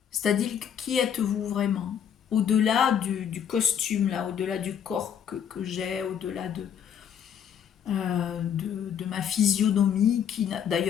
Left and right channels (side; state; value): right; quieter; 8.6 dB